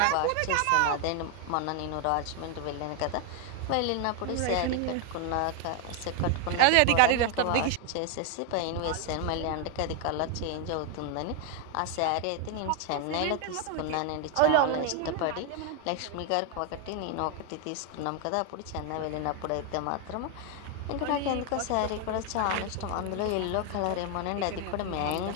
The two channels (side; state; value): both; different; correlation 0.01